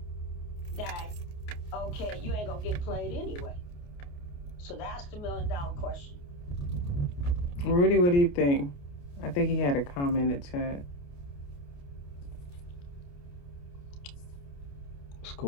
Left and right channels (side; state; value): right; late; 28 ms